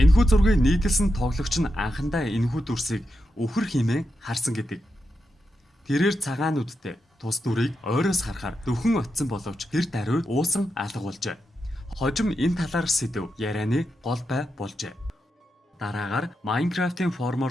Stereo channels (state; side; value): normal; both; correlation 0.87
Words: зургийг нийтэлсэн тоглогч нь анхандаа энэхүү дүрсийг өвхөр хэмээн харсан гэдэг. Тэрээр цагаан нүдтэй тус дүрийг ойроос харахаар дөхөн очсон боловч тэр даруй уусан алга болжээ. Хожим энэ талаар сэдв ярианы гол бай болжээ. Дараагаар Minecraft-ийн